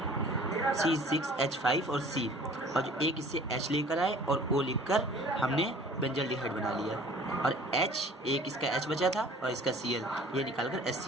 C6H5 और C, और जो एक इससे H लेकर आए और O लिखकर हमने बेंजल्डिहाइड बना लिया। और H, एक इसका H बचा था और इसका Cl, ये निकालकर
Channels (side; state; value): both; normal; correlation 0.49